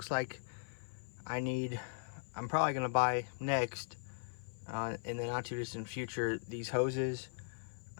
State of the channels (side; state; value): right; silent; 52 dB below the other